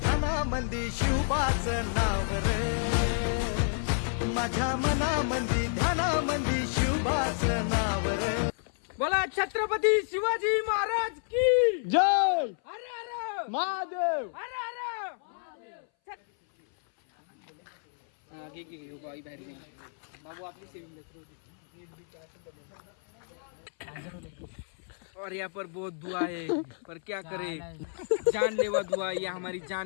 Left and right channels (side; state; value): right; silent; 58 dB below the other